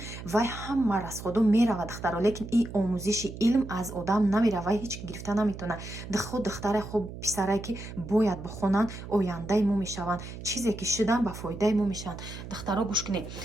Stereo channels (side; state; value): right; noise; hum, 11 dB below the sound